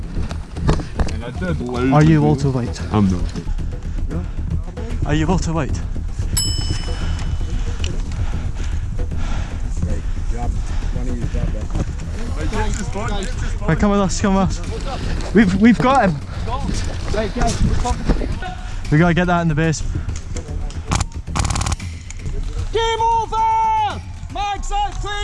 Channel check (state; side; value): identical; both; correlation 1.00